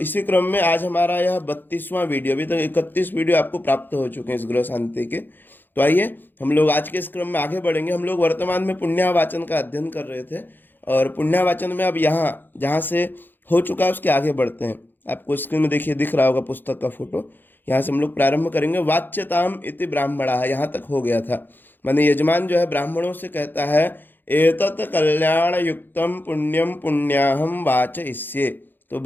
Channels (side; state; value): right; late; 0.093 ms